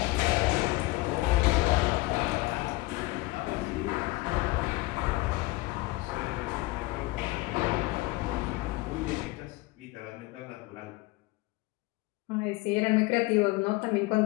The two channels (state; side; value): quieter; right; 21.2 dB